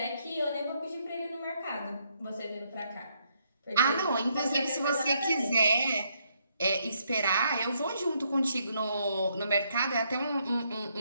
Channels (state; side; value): inverted; both; correlation -0.74